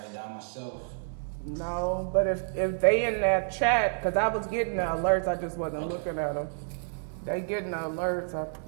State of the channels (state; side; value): silent; left; digital silence